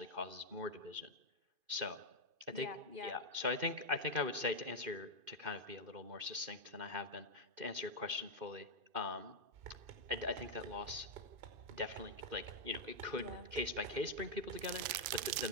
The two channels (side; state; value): left; late; 2.5 ms